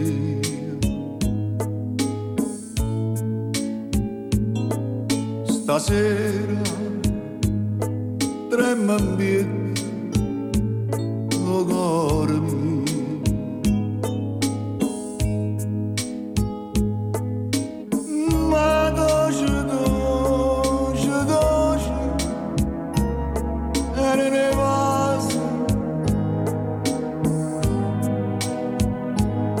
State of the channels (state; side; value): identical; both; correlation 1.00